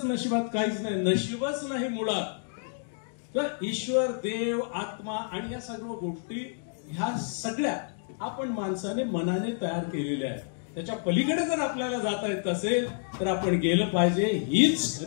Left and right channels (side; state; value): right; silent; digital silence